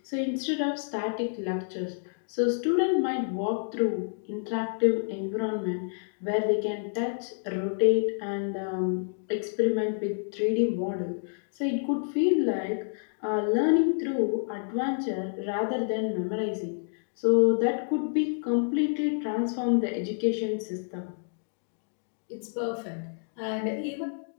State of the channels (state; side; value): silent; right; digital silence